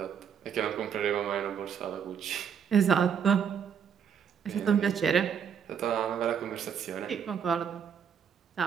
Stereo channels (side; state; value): left; quieter; 7.6 dB